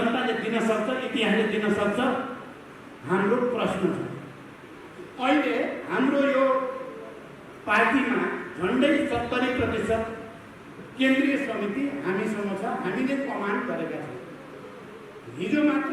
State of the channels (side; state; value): both; identical; correlation 1.00